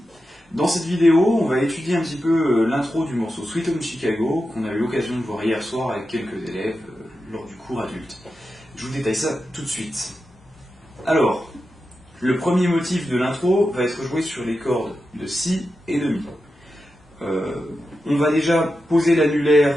Dans cette vidéo, on va étudier un petit peu l'intro du morceau Sweet Home Chicago qu'on a eu l'occasion de voir hier soir avec quelques élèves lors du cours adulte. Je vous détaille ça tout de suite. Alors, le premier motif de l'intro va être joué sur les cordes de Si et de Mi. On va déjà poser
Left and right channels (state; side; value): normal; both; correlation 0.90